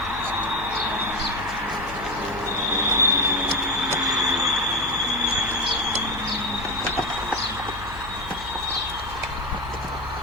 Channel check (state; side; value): noise; left; hum, 14 dB below the sound